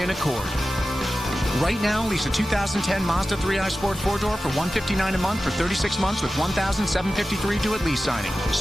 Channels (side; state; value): both; normal; correlation 0.94